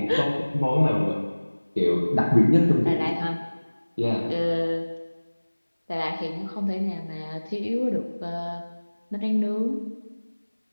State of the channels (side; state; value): both; inverted; correlation -1.00